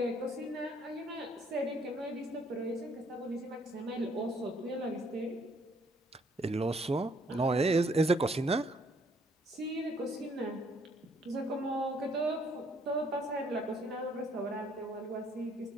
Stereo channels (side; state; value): both; normal; correlation 0.66